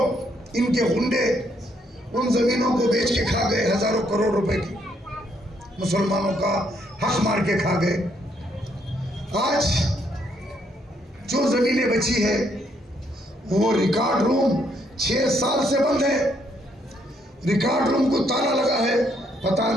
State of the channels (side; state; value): both; normal; correlation 0.72